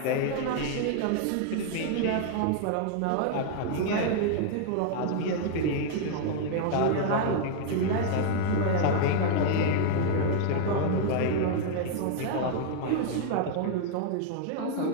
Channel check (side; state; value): both; different; correlation 0.00